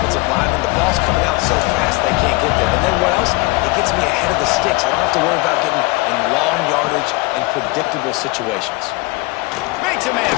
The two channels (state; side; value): quieter; right; 23.5 dB